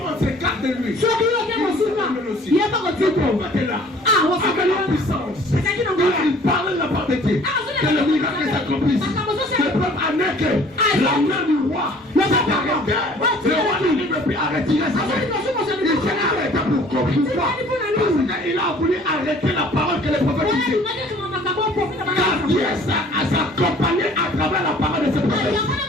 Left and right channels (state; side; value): normal; both; correlation 0.52